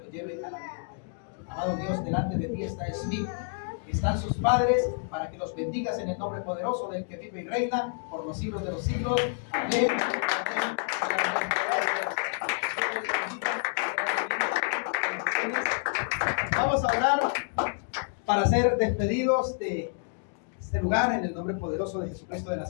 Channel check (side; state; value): right; silent; 59 dB below the other